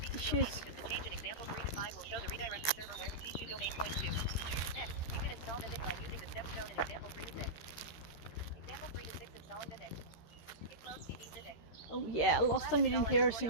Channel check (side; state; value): right; late; 13 ms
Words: tissues. domain. The change in example 3 to 5 will show the redirected server where the C2 domain points to. Next, you can install Mythic by using the steps shown in example 3 to 6. Example 3 to 6, installing Mythic. Git clone CD Mythic. Oh yeah, last time you didn't hear a